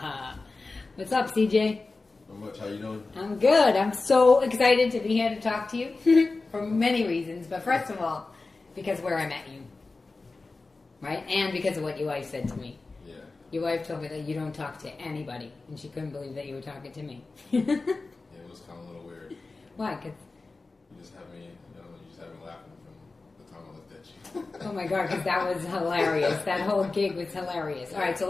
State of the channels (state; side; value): quieter; right; 3.6 dB